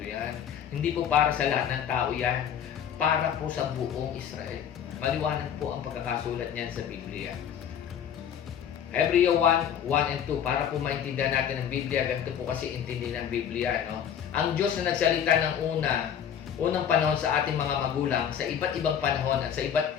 Hindi po para sa lahat ng tao yan. Para po sa buong Israel. Maliwanag po ang pagkakasulat niyan sa Biblia. Hebreo 1 and 2, para po maintindihan natin ang Biblia, ganito po kasi intindi ng Biblia, no? Ang Diyos na nagsalita ng unang panahon sa ating mga magulang, sa iba't ibang panahon at sa iba't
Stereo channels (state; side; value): quieter; right; 8.8 dB